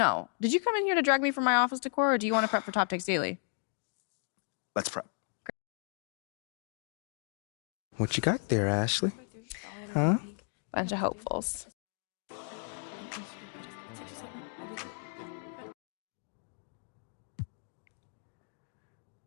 Did you come in here to drag me from my office decor, or do you want to prep for Top Takes Daily? Let's prep. What you got there, Ashley? Huh? Bunch of hopefuls.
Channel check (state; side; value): silent; right; 55 dB below the other